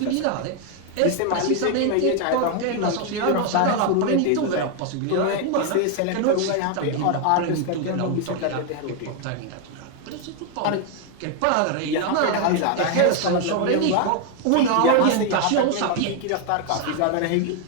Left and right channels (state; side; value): different; both; correlation 0.01